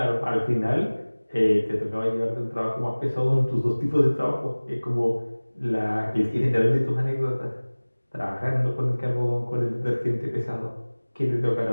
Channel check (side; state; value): both; inverted; correlation -1.00